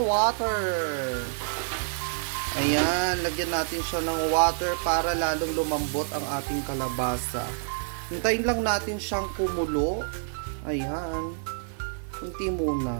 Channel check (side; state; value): left; silent; 60 dB below the other